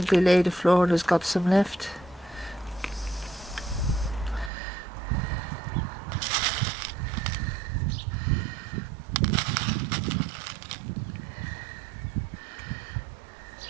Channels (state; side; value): drops out; left; at 4.5 s